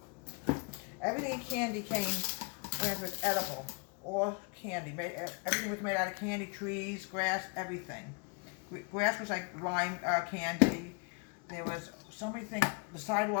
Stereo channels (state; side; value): quieter; right; 33.3 dB